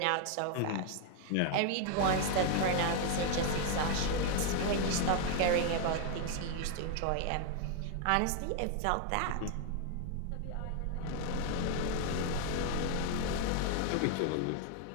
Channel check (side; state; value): both; different; correlation 0.00